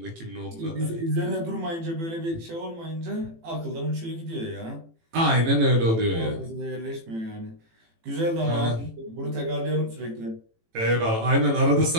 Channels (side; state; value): left; late; 18 ms